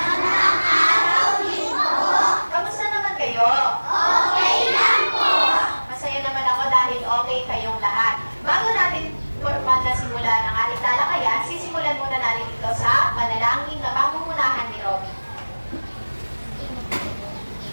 araw din po. Kamusta naman kayo? Okay lang po. Masaya naman ako dahil okay kayong lahat. Bago natin magsimulan ang ating talakayan, sisimulan muna natin ito sa panalangin na pamumunahan ni Robby.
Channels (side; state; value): both; inverted; correlation -1.00